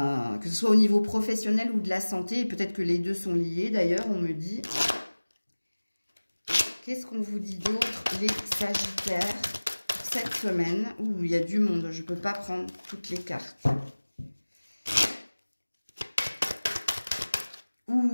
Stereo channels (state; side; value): inverted; both; correlation -1.00